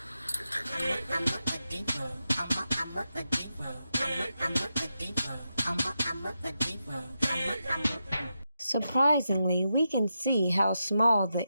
Surprisingly, we can see how small the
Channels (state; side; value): inverted; both; correlation -0.87